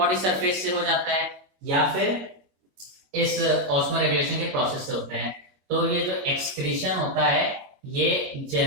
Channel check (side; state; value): left; late; 22 ms